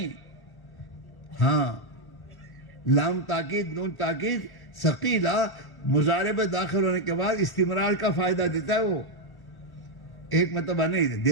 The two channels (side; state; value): right; late; 1.1 ms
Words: ہاں، لام تاکید، نون تاکید ثقیلہ مضارع میں داخل ہونے کے بعد استمرار کا فائدہ دیتا ہے، وہ ایک مرتبہ نہیں،